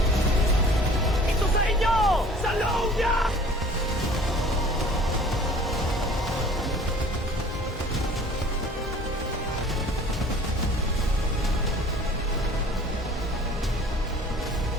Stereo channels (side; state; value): both; normal; correlation 0.49